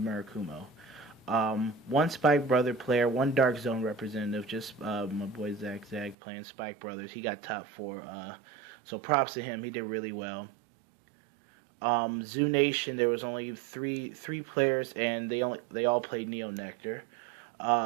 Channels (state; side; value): drops out; left; at 6.2 s